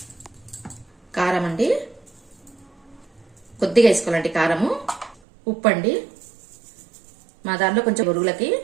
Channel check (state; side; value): drops out; left; at 5.2 s